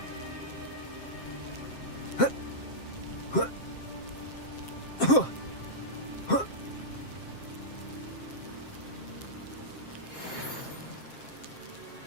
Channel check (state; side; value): late; right; 7.6 ms